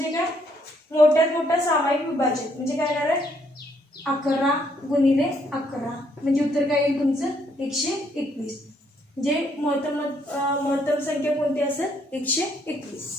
काय मोठ्यात मोठा सामायिक विभाजन म्हणजे काय येणार आहे 11 गुणिले 11 म्हणजे उत्तर काय येईल तुमचं 121 म्हणजे महत्तम संख्या कोणती असेल 121.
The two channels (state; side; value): normal; both; correlation 0.70